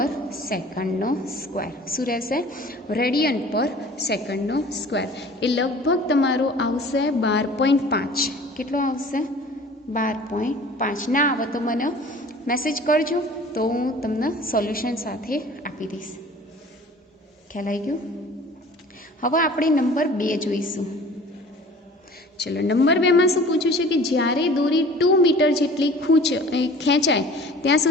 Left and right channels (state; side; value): normal; both; correlation 0.46